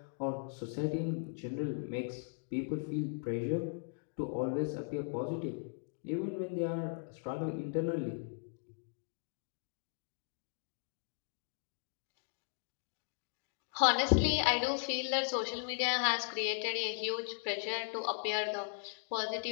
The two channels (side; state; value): right; silent; 53 dB below the other